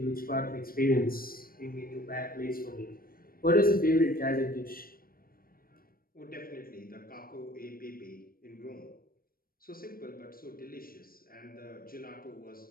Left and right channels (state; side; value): late; right; 0.43 ms